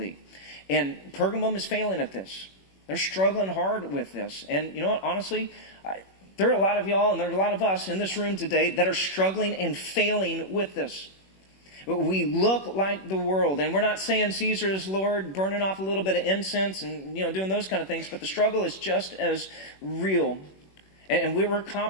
And Pergamum is failing at this. They're struggling hard with this. And you know what? Honestly, there are a lot of y'all and there are a lot of us in this room today that are struggling and failing with this. We look like the world, and we're not saying Caesar is Lord, burning off a little bit of incense and doing those kind of things, but the struggle is just as real. And we're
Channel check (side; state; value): right; late; 21 ms